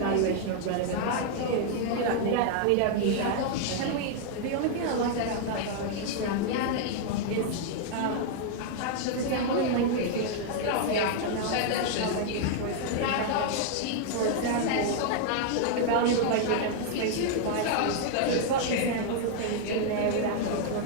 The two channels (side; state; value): both; different; correlation 0.00